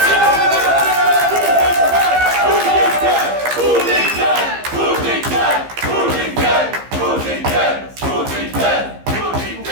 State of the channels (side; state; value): left; late; 15 ms